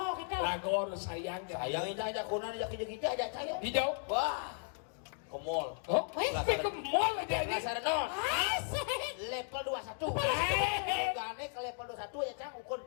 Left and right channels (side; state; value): right; silent; 54 dB below the other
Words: gitu. Lagor sayang. Sayang ini aja kunan aja kita aja saya. Hijau. Wah, ke mall. Oh, ke mall aja ini. Dasar non. Asik. Level 21. Gane ke level 21 ya cang, ukur